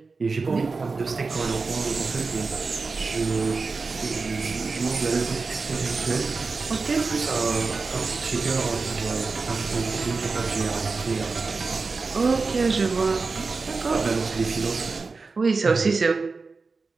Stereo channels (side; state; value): left; quieter; 4.2 dB